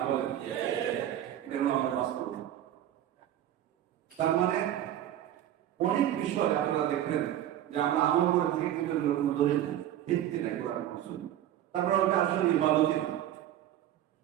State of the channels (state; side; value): quieter; left; 11.9 dB